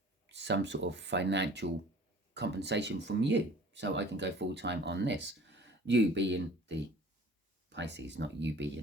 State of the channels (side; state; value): both; normal; correlation 0.48